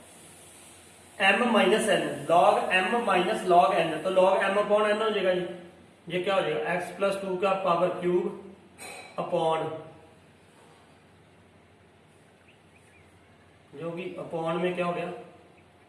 m minus n, log m minus log n। तो log m अपॉन n हो जाएगा, ये क्या हो जाएगा, x प्लस 2 का पावर क्यूब अपॉन, जो कि अपॉन में क्या हो गया,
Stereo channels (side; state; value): both; identical; correlation 1.00